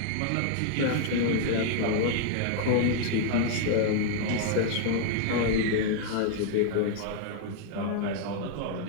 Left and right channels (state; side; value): different; both; correlation 0.00